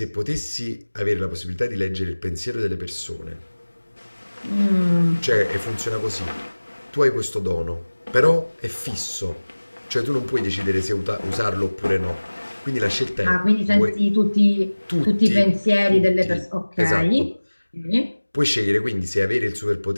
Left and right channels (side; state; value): both; inverted; correlation -1.00